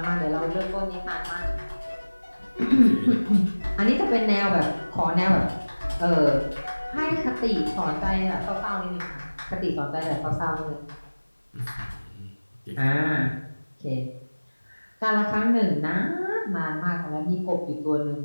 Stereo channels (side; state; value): both; inverted; correlation -1.00